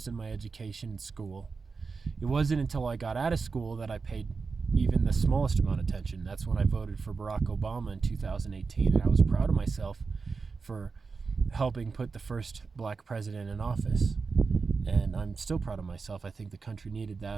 in my education in school. It wasn't until I got out of school that I paid even the smallest amount of attention. That's when I voted for Barack Obama in 2018, and I was proud of myself for helping put the first black president in office. And I'm still proud of myself. I think the country needed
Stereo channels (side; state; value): left; quieter; 4.7 dB